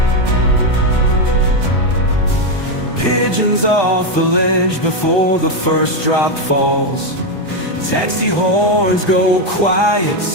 Pigeons off the ledge before the first drop falls. Taxi horns go quiet,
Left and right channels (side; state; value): right; late; 1.2 ms